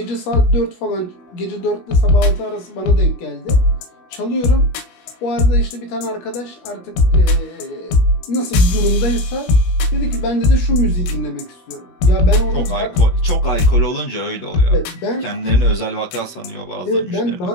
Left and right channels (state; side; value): late; right; 17 ms